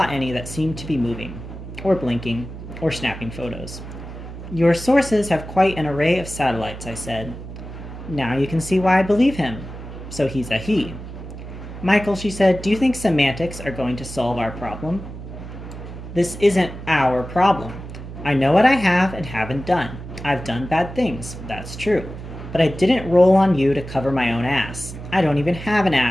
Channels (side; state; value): right; noise; hum, 11 dB below the sound